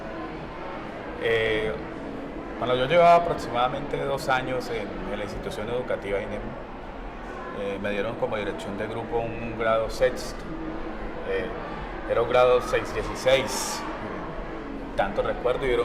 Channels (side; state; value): both; identical; correlation 1.00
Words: Eh, Cuando yo llevaba aproximadamente 2 años en la institución educativa INEM, me dieron como dirección de grupo un grado sexto. Era un grado 616, tanto recuerdo, y era